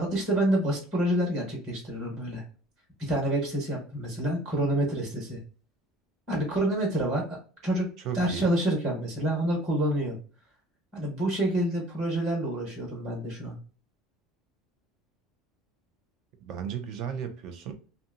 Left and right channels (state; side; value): normal; both; correlation 0.52